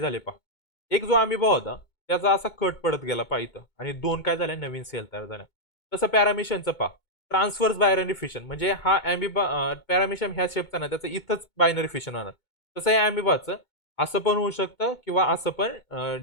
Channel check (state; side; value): late; right; 2.2 ms